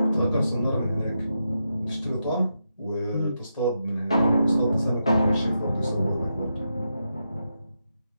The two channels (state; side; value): inverted; both; correlation -0.85